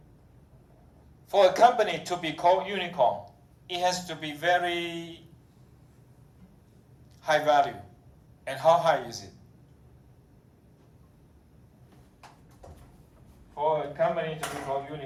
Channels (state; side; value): identical; both; correlation 1.00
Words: For a company to be called unicorn, it has to be very high value. And how high is it? For a company to be called